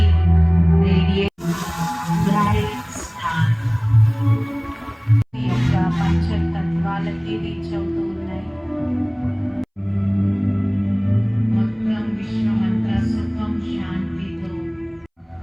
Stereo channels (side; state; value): both; identical; correlation 1.00